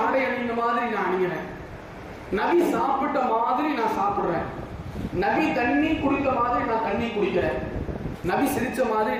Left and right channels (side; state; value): both; identical; correlation 1.00